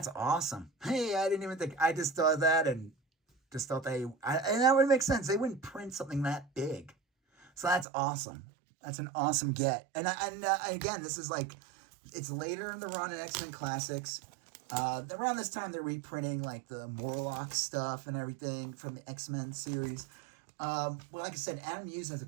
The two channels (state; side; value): drops out; left; at 7.9 s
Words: awesome. Hey, I didn't even think, I just thought that, and just thought and that would make sense. They wouldn't print something that big. So that's awesome. That's an awesome get. And again, this is like, it's later in the run in X-Men Classics. Around this time, they're reprinting like the Morlock stuff and everything from the X-Men series. Well, like I said, Adam Hughes has a